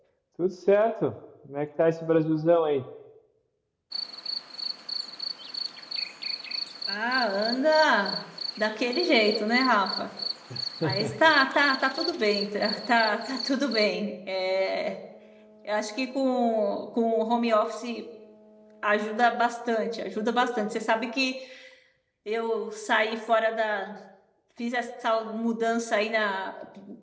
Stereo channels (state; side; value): identical; both; correlation 1.00